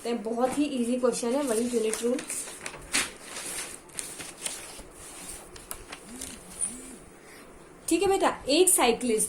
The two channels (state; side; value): identical; both; correlation 1.00